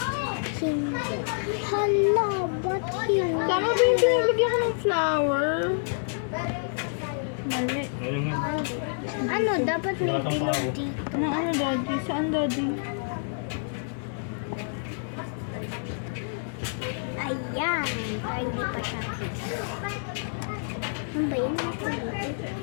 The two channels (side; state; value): right; silent; digital silence